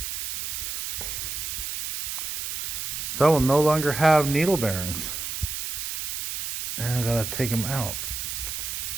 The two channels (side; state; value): right; noise; hiss, 4 dB below the sound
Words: So I will no longer have needle bearings. And I gotta take them out.